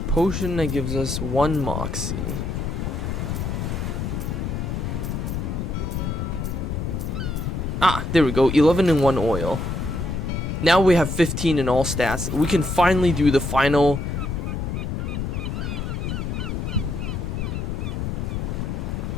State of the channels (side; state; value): left; noise; rumble, 2 dB below the sound